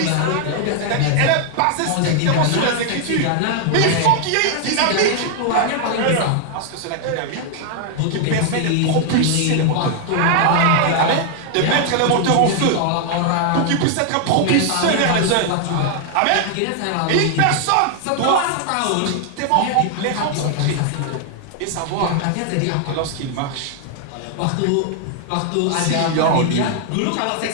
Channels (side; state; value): both; different; correlation 0.00